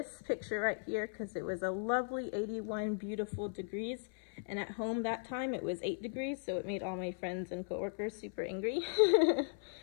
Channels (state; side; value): silent; right; 53 dB below the other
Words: picture right here because it was a lovely 81 beautiful degrees. And at home that time it was 8 degrees, so it made all my friends and coworkers super angry